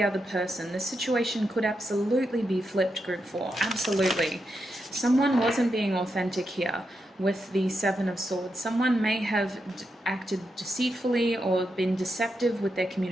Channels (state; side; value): normal; both; correlation 0.85